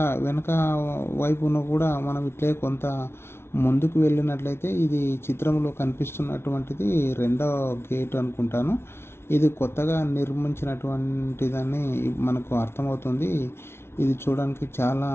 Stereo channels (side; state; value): right; late; 0.12 ms